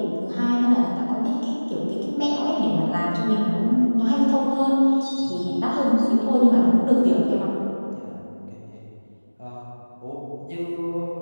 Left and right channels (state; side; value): inverted; both; correlation -1.00